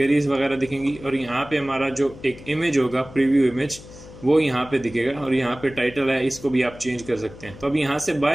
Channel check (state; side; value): noise; left; hum, 18 dB below the sound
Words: वगैरह दिखेंगी और यहाँ पे हमारा जो एक इमेज होगा प्रीव्यू इमेज वो यहाँ पे दिखेगा और यहाँ पे टाइटल है, इसको भी आप चेंज कर सकते हैं। तो अब यहाँ से